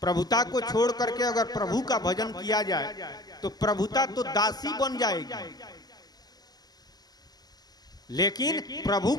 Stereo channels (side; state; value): right; late; 0.19 ms